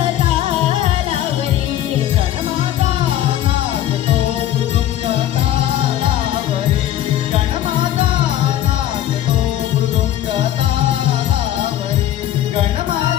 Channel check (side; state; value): right; quieter; 12.3 dB